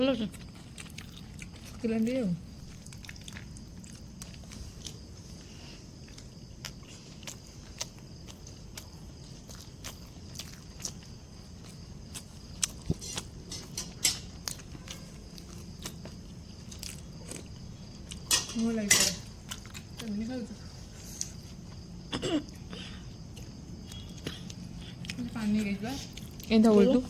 ଅଛି କିଲୋ ଆଉ ମୁଁ ଲାଗିପାରେ କେମିତି ଖାଉଛୁ? ପାଣି ହେଇଯିବା ଏମିତି ବୋଲୁ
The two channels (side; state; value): both; identical; correlation 1.00